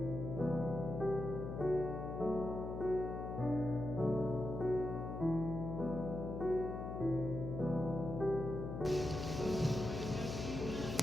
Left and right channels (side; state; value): left; noise; hum, 5 dB below the sound